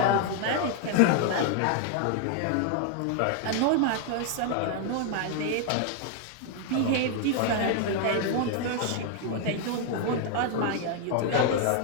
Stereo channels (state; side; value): different; both; correlation 0.00